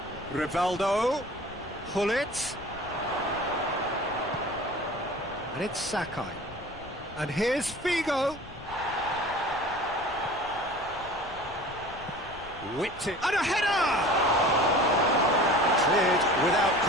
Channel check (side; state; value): left; noise; rumble, 19 dB below the sound